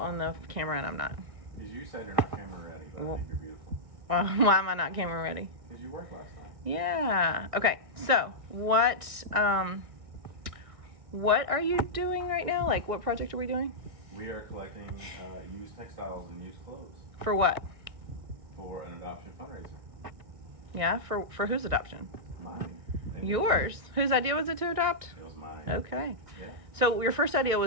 the camera and I'm not? Because you said you're not camera ready, but I think you're beautiful. Well, why am I not camera ready? Because you worked last night. Yeah. Okay. So what are you doing right now? Like, what project are we doing? We are collecting used textiles and used clothes For what? for an adoption fundraiser. Yeah. For whose adoption? Mine. And Yours. Whose idea was it to adopt? It was mine. Okay. Yeah. So your first idea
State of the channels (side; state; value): left; late; 1.6 ms